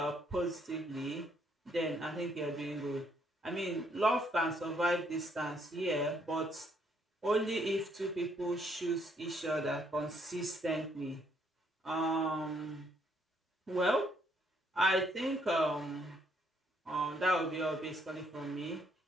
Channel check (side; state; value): both; normal; correlation 0.69